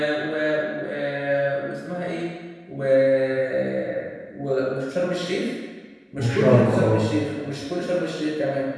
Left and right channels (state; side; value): identical; both; correlation 1.00